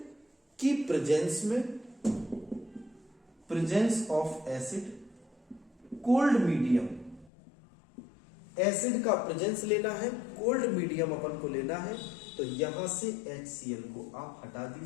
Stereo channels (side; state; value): right; drops out; at 7.3 s